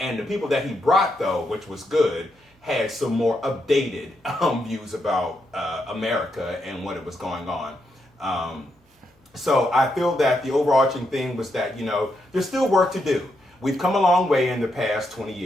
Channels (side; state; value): both; normal; correlation 0.81